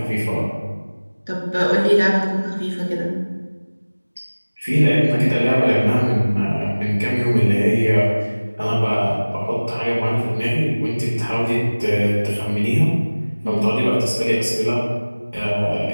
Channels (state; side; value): inverted; both; correlation -1.00